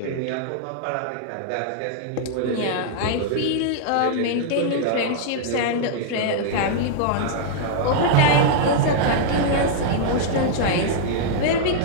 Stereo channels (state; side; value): different; both; correlation -0.01